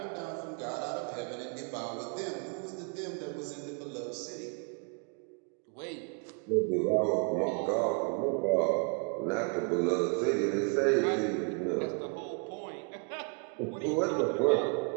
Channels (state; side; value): quieter; left; 36.4 dB